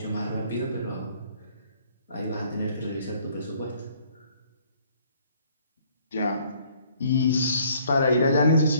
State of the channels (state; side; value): inverted; both; correlation -0.61